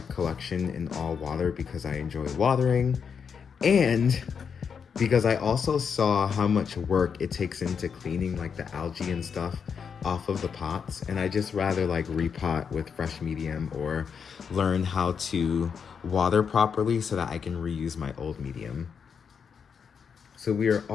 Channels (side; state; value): right; quieter; 6.6 dB